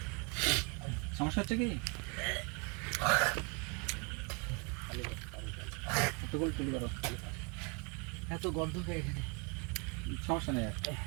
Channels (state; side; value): quieter; left; 33.3 dB